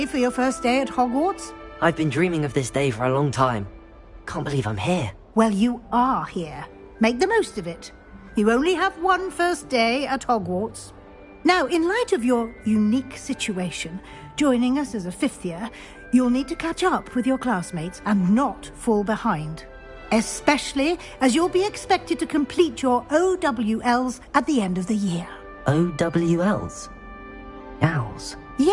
for your first day at Hogwarts? I've been dreaming of this day for a long time. Can't believe I'm here. Well, you are here. Make the most of it. You only have one first day at Hogwarts. Now, in light of your unique situation, joining us as a 5th year, You'll need to catch up with your classmates and not fall behind. Especially as you'll be expected to complete your OWLs at the end of the year. OWLs? Owls?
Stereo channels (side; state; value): both; identical; correlation 1.00